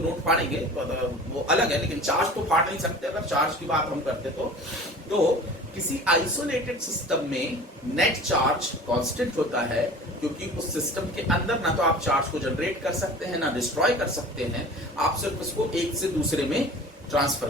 फाड़ेंगे तो वो अलग है, लेकिन चार्ज तो फाड़ नहीं सकते। अगर चार्ज की बात हम करते तो किसी आइसोलेटेड सिस्टम में नेट चार्ज कांस्टेंट होता है, क्योंकि उस सिस्टम के अंदर ना तो आप चार्ज को जनरेट कर सकते हैं ना डिस्ट्रॉय कर सकते हैं, आप सिर्फ उसको एक से दूसरे में ट्रांसफर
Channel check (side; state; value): both; normal; correlation 0.41